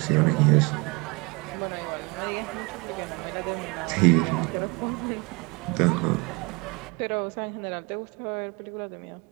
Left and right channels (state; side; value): quieter; left; 27.7 dB